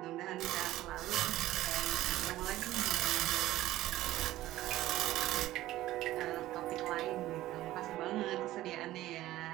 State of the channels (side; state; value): left; quieter; 15.4 dB